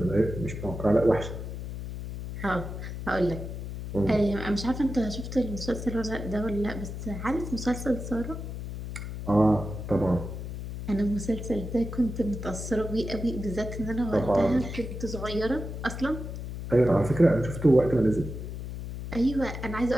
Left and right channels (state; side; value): noise; left; hum, 7 dB below the sound